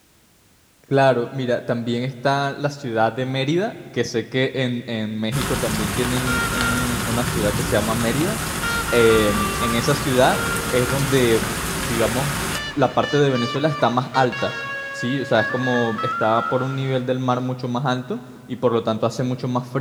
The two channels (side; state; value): both; identical; correlation 1.00